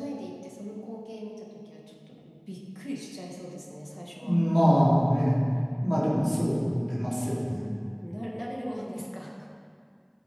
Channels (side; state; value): both; identical; correlation 1.00